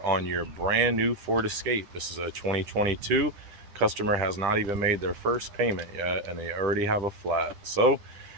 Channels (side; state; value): left; late; 10 ms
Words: on your brand new Ford Escape. This is a 2022. Customer has not even made their first payment yet and they already have a flat. So